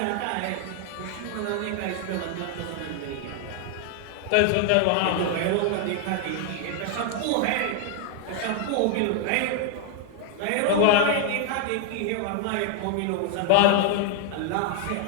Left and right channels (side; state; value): both; different; correlation 0.00